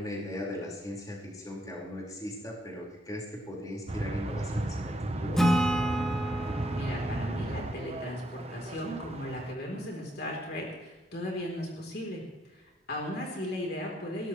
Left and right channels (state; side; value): normal; both; correlation 0.74